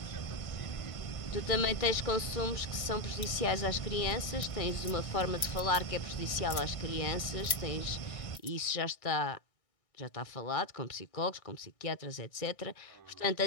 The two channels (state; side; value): late; right; 1.6 ms